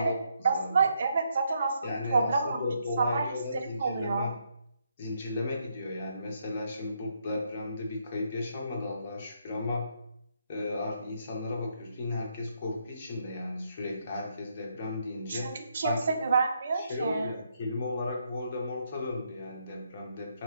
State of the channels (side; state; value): both; inverted; correlation -0.76